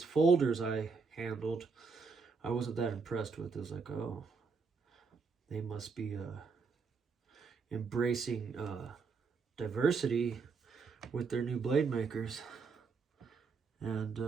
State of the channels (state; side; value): quieter; left; 4.9 dB